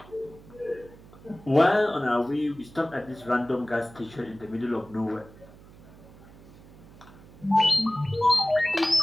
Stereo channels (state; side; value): noise; right; hum, 21 dB below the sound